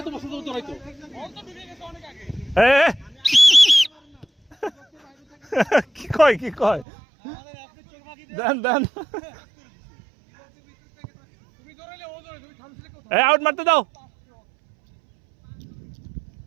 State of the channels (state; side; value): drops out; left; at 6.9 s